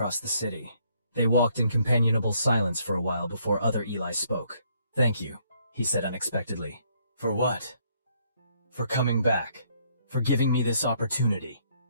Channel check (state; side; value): inverted; both; correlation -0.68